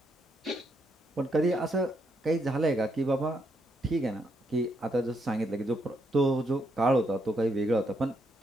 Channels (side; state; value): both; normal; correlation 0.77